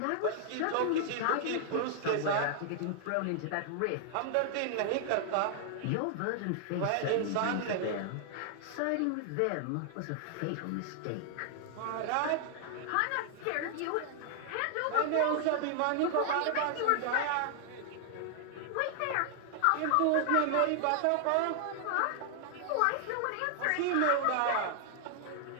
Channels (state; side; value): different; both; correlation 0.00